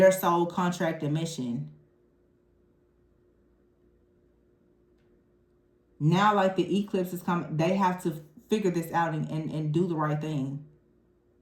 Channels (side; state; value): both; identical; correlation 1.00